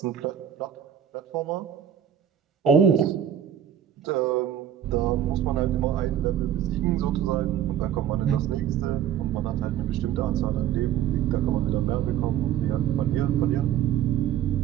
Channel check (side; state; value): left; quieter; 10.0 dB